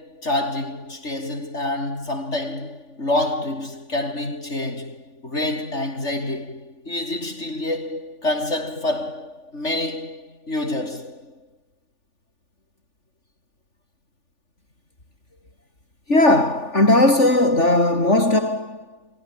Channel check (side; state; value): right; late; 3.4 ms